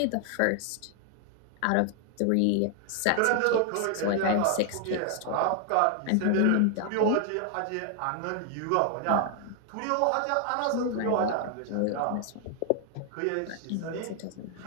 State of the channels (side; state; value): both; different; correlation 0.00